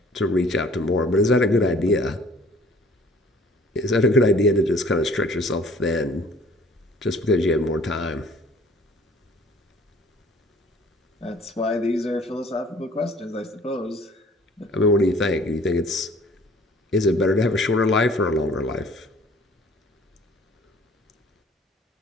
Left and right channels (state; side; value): normal; both; correlation 0.54